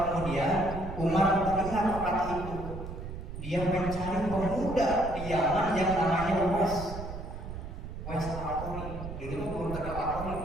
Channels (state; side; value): noise; right; rumble, 8 dB below the sound